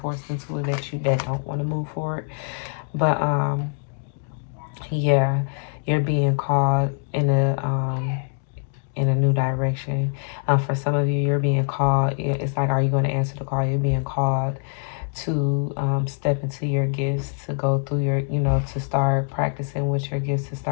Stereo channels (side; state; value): right; silent; 63 dB below the other